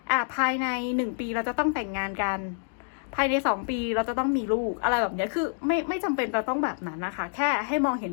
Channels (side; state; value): right; silent; digital silence